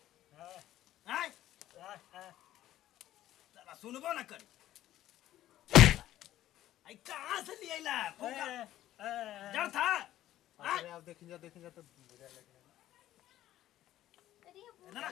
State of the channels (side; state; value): right; quieter; 13.5 dB